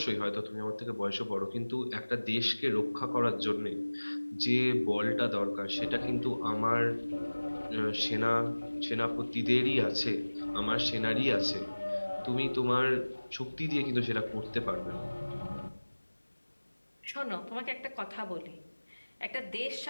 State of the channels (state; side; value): inverted; both; correlation -1.00